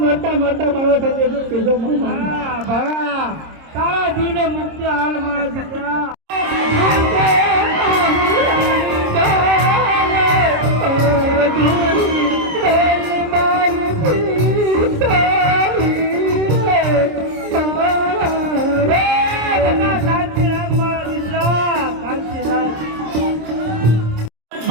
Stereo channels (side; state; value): left; late; 26 ms